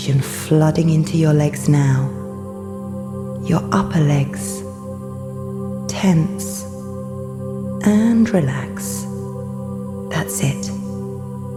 flooding into your legs now. Your upper legs. Tense. And relax. That's it.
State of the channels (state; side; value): identical; both; correlation 1.00